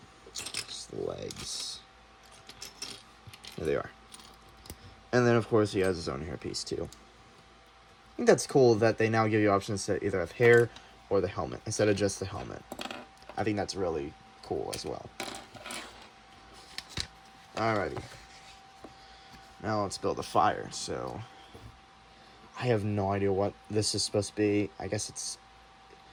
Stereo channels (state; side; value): identical; both; correlation 1.00